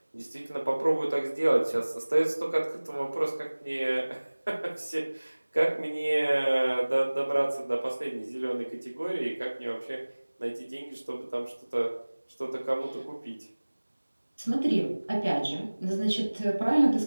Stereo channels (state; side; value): inverted; both; correlation -1.00